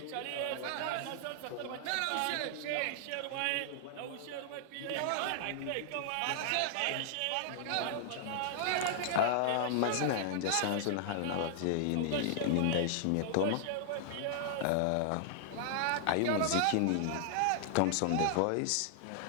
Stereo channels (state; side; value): different; both; correlation -0.01